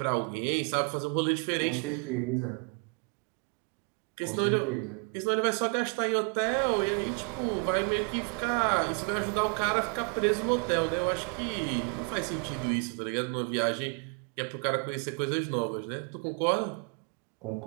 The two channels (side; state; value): left; quieter; 34.8 dB